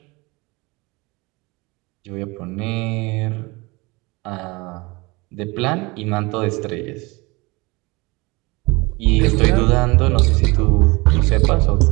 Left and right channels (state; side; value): quieter; left; 24.7 dB